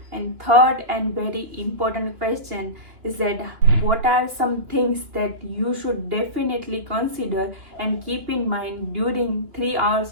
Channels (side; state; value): left; late; 3.0 ms